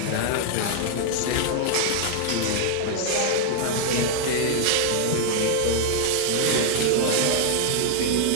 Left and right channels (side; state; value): both; different; correlation 0.00